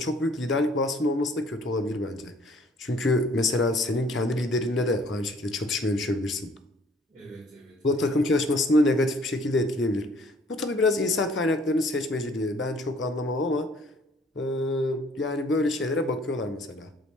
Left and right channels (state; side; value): normal; both; correlation 0.58